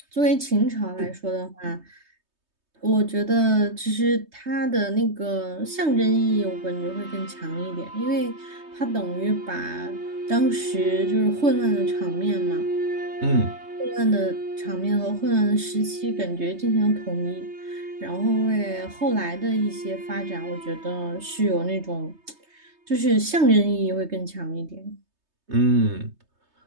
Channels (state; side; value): late; left; 3.2 ms